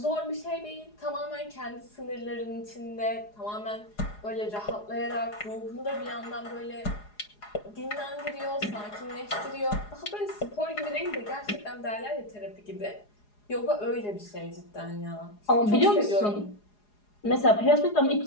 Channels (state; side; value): late; right; 4.8 ms